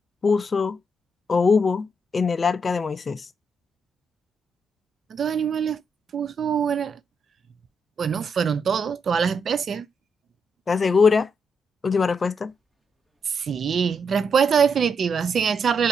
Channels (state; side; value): normal; both; correlation 0.79